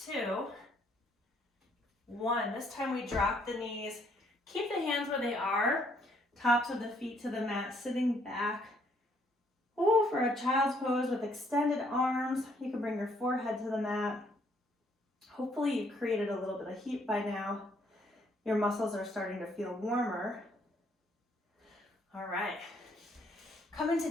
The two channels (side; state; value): both; normal; correlation 0.68